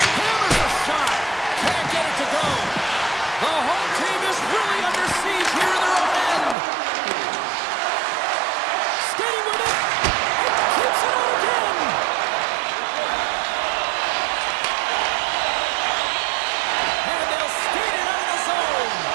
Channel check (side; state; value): left; drops out; at 6.6 s